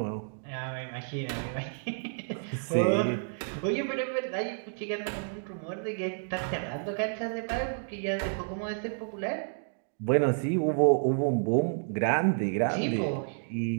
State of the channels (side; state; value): left; silent; digital silence